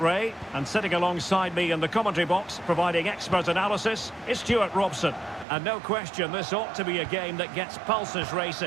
Ray, and sitting alongside me in the commentary box, providing expert analysis, is Stuart Robson. And no question, this ought to be a game that gets pulses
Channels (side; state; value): left; drops out; at 5.5 s